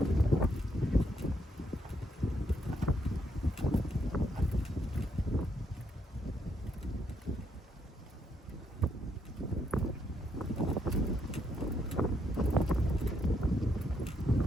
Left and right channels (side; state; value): both; normal; correlation 0.76